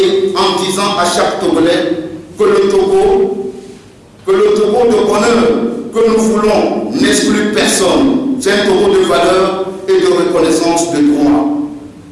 en disant à chaque Togolais que le Togo de bonheur que nous voulons n'exclut personne. C'est un Togo de valeur et de reconnaissance de droit.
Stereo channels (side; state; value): both; identical; correlation 1.00